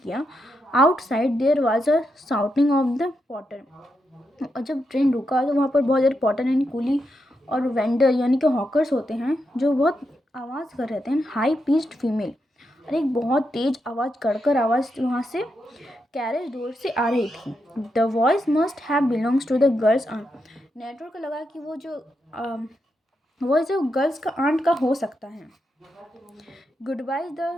किया। Outside there was a shouting of the porter, और जब ट्रेन रुका तो वहाँ पर बहुत ज़्यादा पॉटर यानी कुली और वेंडर यानी कि हॉकर्स होते हैं जो बहुत आवाज़ कर रहे थे, हाई पिच्ड फीमेल, और एक बहुत तेज आवाज़ कड़कर आवाज़ वहाँ से कैरेज डोर से आ रही थी। The voice must have belongs to the girl's aunt, नेटवर्क को लगा कि वो जो वॉइस जो गर्ल्स का आंट का हो सकता है। Goodbye the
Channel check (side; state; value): both; normal; correlation 0.84